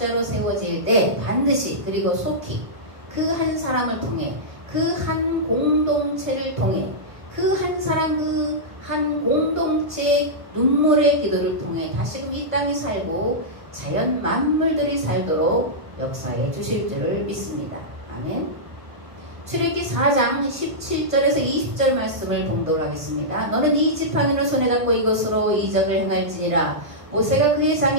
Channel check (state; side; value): late; left; 1.6 ms